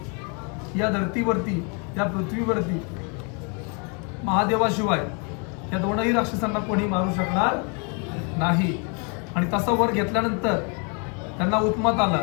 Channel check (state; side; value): quieter; right; 35.6 dB